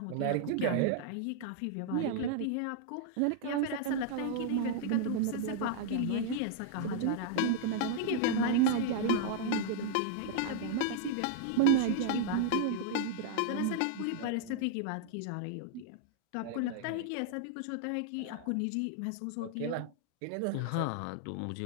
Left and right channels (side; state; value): both; different; correlation 0.00